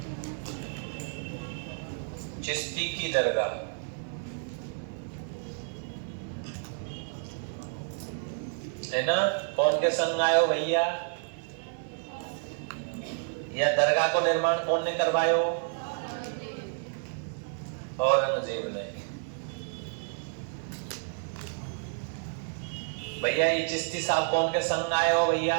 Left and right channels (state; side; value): silent; left; 58 dB below the other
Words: चिश्ती की दरगाह। है ना? कौन के संग आयो भैया? या दरगाह को निर्माण कौन ने करवायो? औरंगजेब ने। भैया ये चिश्ती साहब कौन के संग आयो भैया?